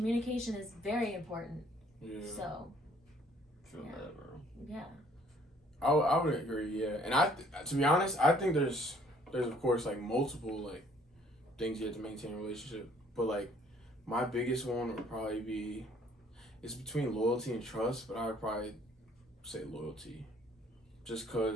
is very important. Yeah. So, Feel that, bro. yeah. I would agree, yeah. And to be honest, I think there's of course like multiple like things you have to maintain in a relationship, but like my biggest one would probably be, it's between loyalty and trust, but I would probably say loyalty, just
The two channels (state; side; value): normal; both; correlation 0.60